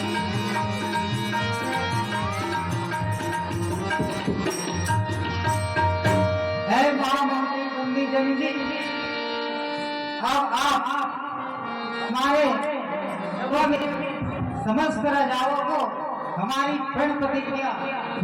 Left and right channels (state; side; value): identical; both; correlation 1.00